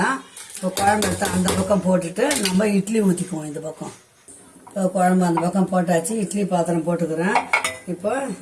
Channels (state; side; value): identical; both; correlation 1.00